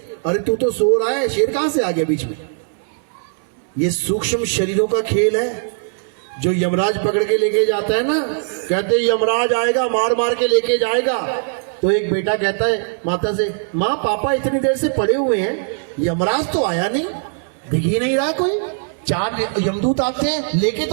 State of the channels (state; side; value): silent; left; 63 dB below the other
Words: अरे तू तो सो रहा है, शेर कहां से आ गया बीच में? ये सूक्ष्म शरीरों का खेल है। जो यमराज पकड़ के लेके जाता है ना, कहते यमराज आएगा मार मार के लेके जाएगा। तो एक बेटा कहता है माता से, माँ पापा इतनी देर से पड़े हुए हैं, यमराज तो आया नहीं, दिख ही नहीं रहा कोई। 4 यमदूत आते हैं, लेके